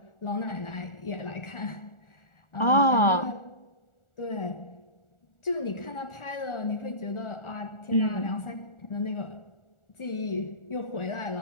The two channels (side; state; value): right; late; 1.4 ms